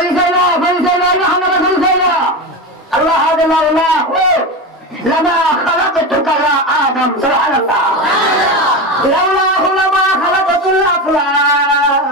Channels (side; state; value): both; normal; correlation 0.20